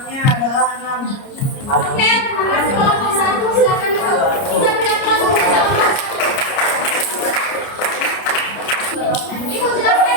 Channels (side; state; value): right; late; 30 ms